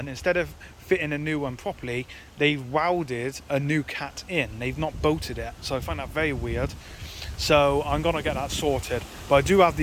instead of fitting a new one properly, they've welded a new cat in. They've not bolted it. So I find that very weird. So I'm gonna get that sorted. But I do have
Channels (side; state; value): both; identical; correlation 1.00